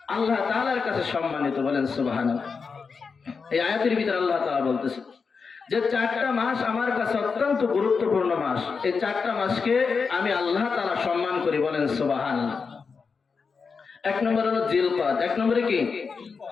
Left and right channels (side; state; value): right; quieter; 5.2 dB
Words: আল্লাহ তাআলার কাছে সম্মানিত। বলেন সুবহানাল্লাহ। এই আয়াতের ভিতর আল্লাহ তাআলা বলতেছে যে 4টা মাস আমার কাছে অত্যন্ত গুরুত্বপূর্ণ মাস। এই 4টা মাসকে আমি আল্লাহ তাআলা সম্মান করি। বলেন সুবহানাল্লাহ। এক নম্বর হলো জিলকদ। এক নম্বরে কি?